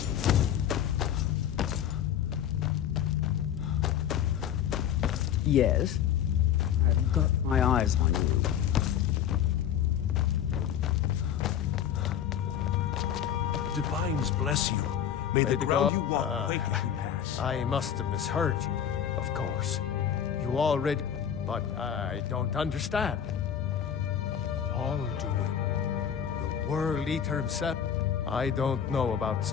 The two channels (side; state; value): right; quieter; 9.3 dB